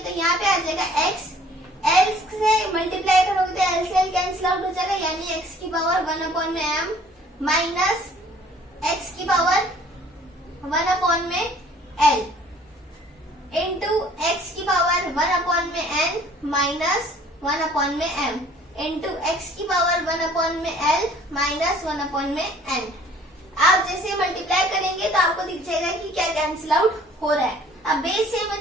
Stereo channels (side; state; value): both; normal; correlation 0.55